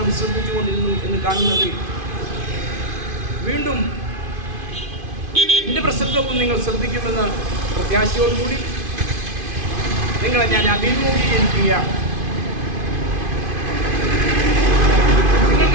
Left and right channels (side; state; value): left; late; 2.5 ms